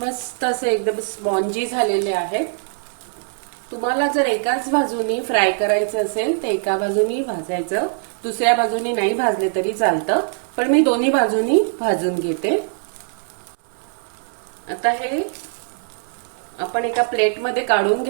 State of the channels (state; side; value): silent; left; 65 dB below the other